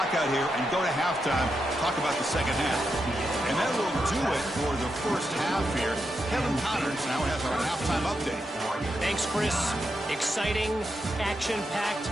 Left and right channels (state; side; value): normal; both; correlation 0.85